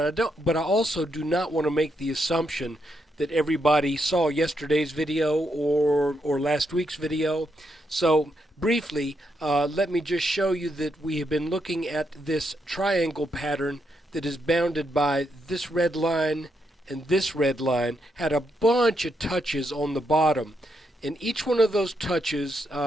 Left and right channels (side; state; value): both; normal; correlation 0.80